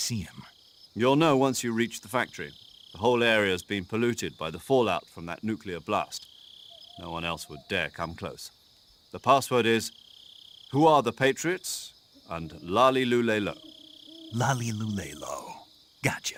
him? You'll know once you reach the factory. The whole area's been polluted by the fallout from that nuclear blast. No one else would dare come close. The password is, "Who are the Patriots?" and Lali Lule Lo. Lali Lule Lo.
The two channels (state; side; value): identical; both; correlation 1.00